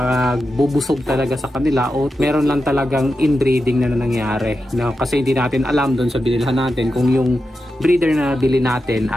talaga sa kanila, o meron lang talagang inbreeding na nangyari. No? Kasi hindi natin alam doon sa binilhan natin kung yung breeder na bili natin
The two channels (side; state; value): both; normal; correlation 0.90